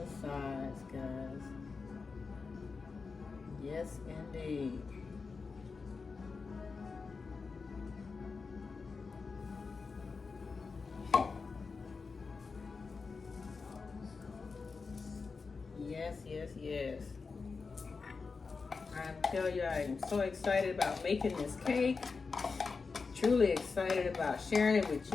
sides, guys. Yes, indeed. Yes, yes, yes. I tell you, I am so excited about making this cake. Truly excited about sharing it with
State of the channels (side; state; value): right; quieter; 4.6 dB